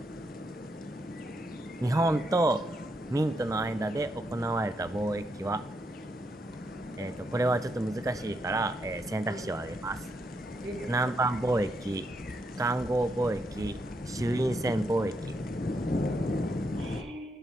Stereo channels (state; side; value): normal; both; correlation 0.79